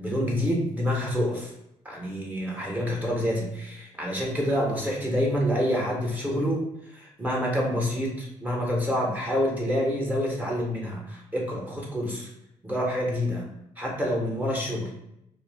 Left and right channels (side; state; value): both; normal; correlation 0.71